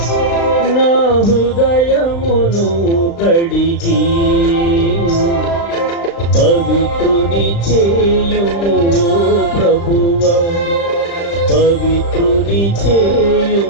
నా హృదయమును కడిగి పవిత్రుని చేయుము ప్రభువా, పవిత్రుని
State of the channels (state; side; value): late; right; 35 ms